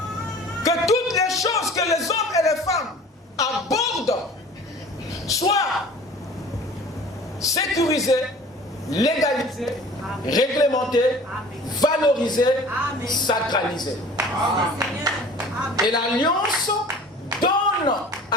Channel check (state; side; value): normal; both; correlation 0.45